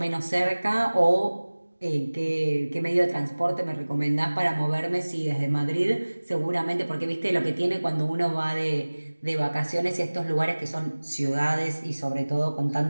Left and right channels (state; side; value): inverted; both; correlation -1.00